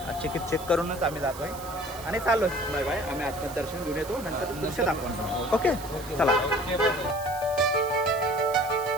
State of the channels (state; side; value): noise; right; hiss, 15 dB below the sound